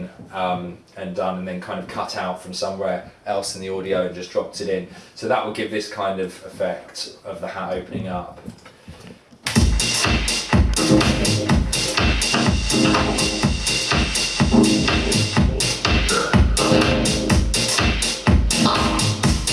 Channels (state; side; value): identical; both; correlation 1.00